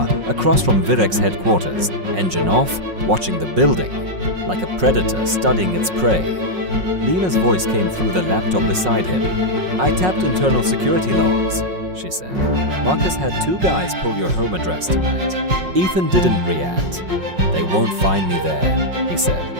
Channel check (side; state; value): left; late; 5.5 ms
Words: across from Virex headquarters, engine off, watching the building, like a predator studying its prey. Lena's voice came through the laptop beside him. "I tapped internal security logs," she said. "Marcus had 2 guys pull your home address tonight." Ethan didn't react. "They won't find me there," he said.